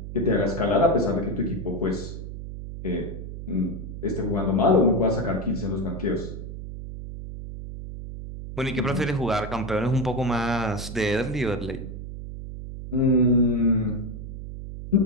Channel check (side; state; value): right; noise; hum, 9 dB below the sound